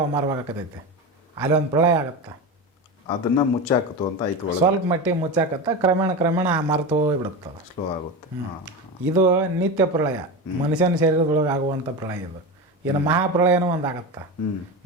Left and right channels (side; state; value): both; normal; correlation 0.22